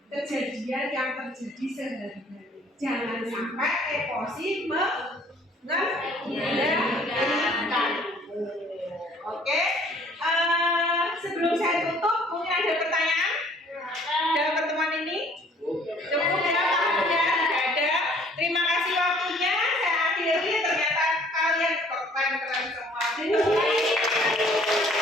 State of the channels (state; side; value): normal; both; correlation 0.57